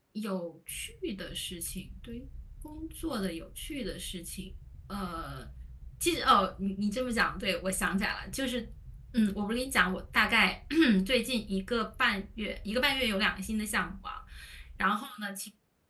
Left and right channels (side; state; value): both; identical; correlation 1.00